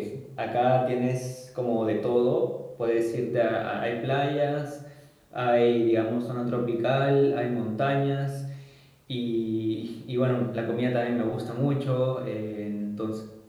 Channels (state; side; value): identical; both; correlation 1.00